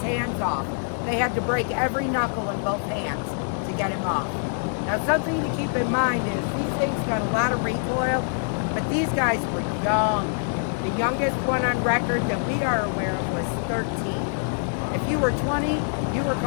hands off. They had to break every knuckle in both hands to get him off. Now something to keep in mind is these things got a lot of recoil, but these guys were young. The youngest one on record that we are aware of was 13. If you were 20, you were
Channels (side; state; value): right; silent; digital silence